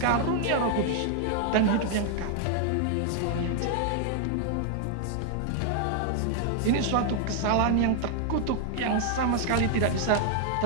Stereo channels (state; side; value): different; both; correlation 0.00